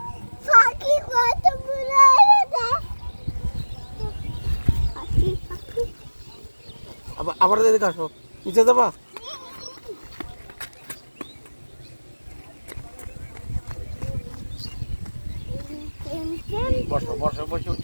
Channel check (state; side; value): inverted; both; correlation -1.00